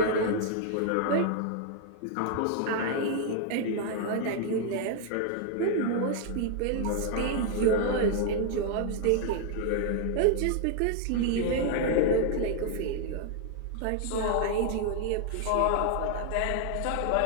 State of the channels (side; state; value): both; different; correlation 0.00